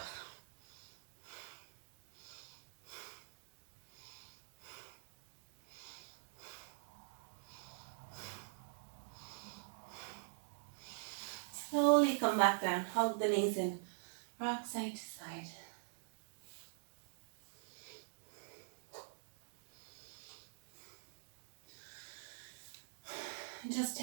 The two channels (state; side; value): silent; left; digital silence